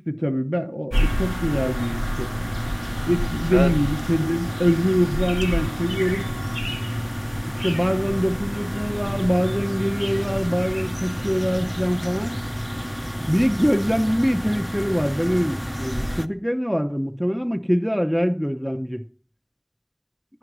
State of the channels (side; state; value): both; identical; correlation 1.00